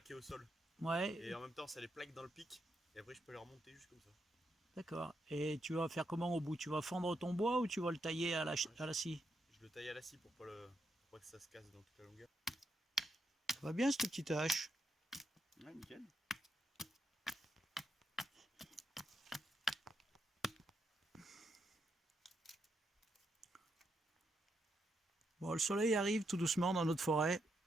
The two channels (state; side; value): normal; both; correlation 0.81